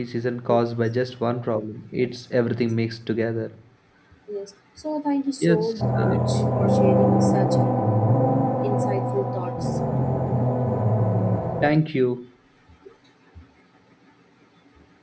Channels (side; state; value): both; identical; correlation 1.00